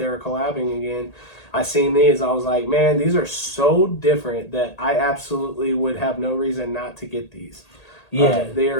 were collabing again, I seen these, I was like, man, these are so different that I absolutely would have no reason not to get these. Yeah. They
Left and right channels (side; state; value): right; late; 1.8 ms